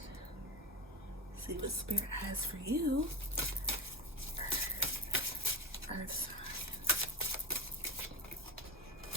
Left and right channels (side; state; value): both; normal; correlation 0.18